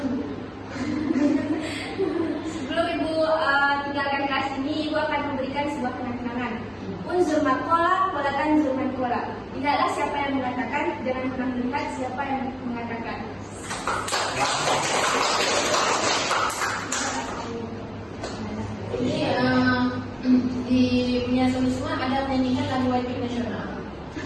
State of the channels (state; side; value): identical; both; correlation 1.00